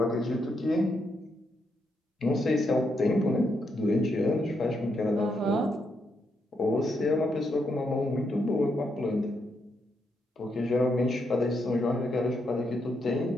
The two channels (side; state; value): both; normal; correlation 0.80